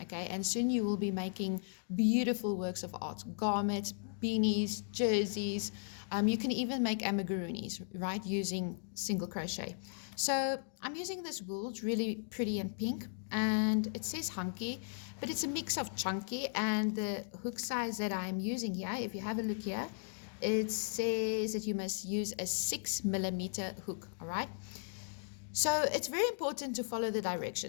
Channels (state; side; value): silent; right; digital silence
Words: Okay, and soon you will be making beautiful works of art, garments, beanies, jerseys. You can even make amigurumis, right, using single crochet. So I'm using this wool. It's really pretty and pink, and it says hunky, but it's a mix of chunky, and the hook size that I'm using here, if you have a look here, it says that you must use a 6mm hook. All right, so it's very important to follow the